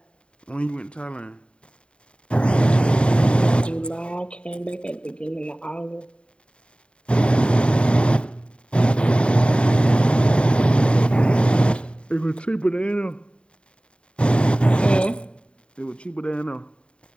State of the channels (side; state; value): right; late; 0.055 ms